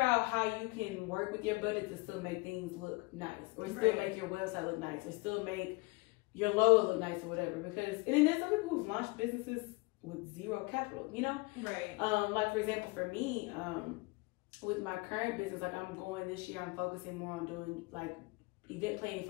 out how you can work with your budget to still make things look nice, or still make your website look nice, or still make your logo look nice, or whatever. Because, and then there's some people who've launched businesses with zero capital, you know? Like for example, for me, with my current business, like this year, I'm focusing more on doing like event planning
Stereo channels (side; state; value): right; quieter; 26.0 dB